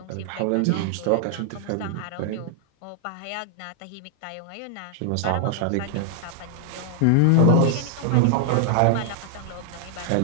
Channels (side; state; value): both; different; correlation 0.00